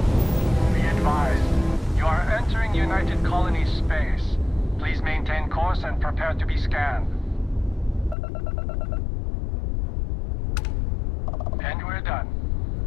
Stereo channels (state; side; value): drops out; right; at 8.2 s